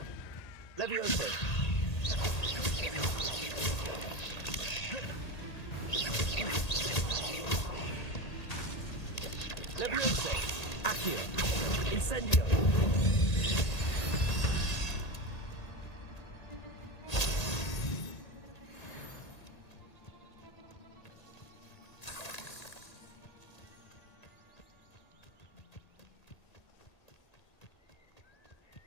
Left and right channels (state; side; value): late; right; 1.8 ms